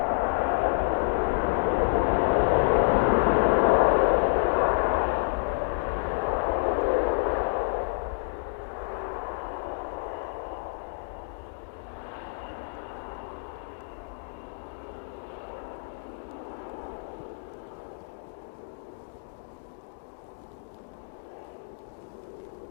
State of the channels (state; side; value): silent; right; digital silence